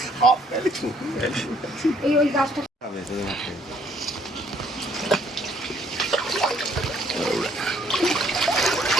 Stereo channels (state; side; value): normal; both; correlation 0.64